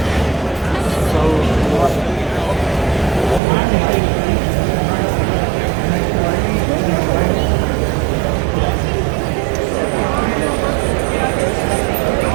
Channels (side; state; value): left; drops out; at 3.4 s